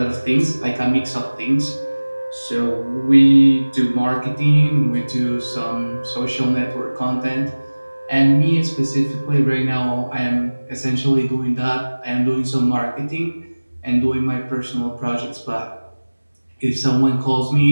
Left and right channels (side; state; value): both; inverted; correlation -1.00